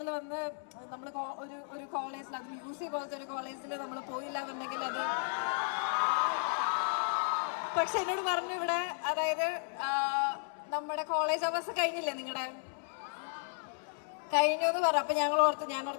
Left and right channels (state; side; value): silent; right; digital silence